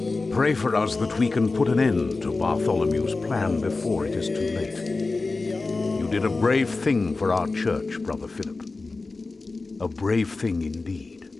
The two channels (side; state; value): right; quieter; 3.6 dB